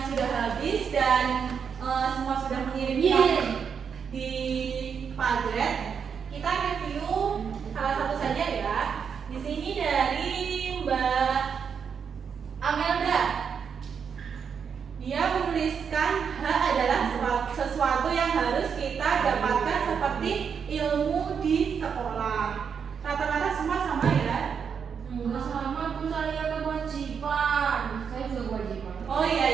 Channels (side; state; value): left; quieter; 6.8 dB